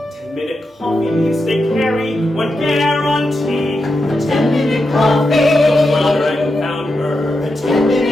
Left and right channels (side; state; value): both; normal; correlation 0.87